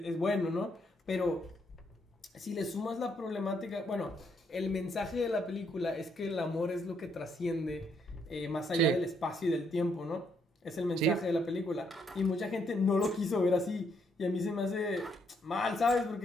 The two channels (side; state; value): both; normal; correlation 0.73